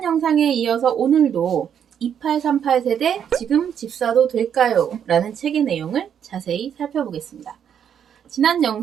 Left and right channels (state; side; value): quieter; left; 8.6 dB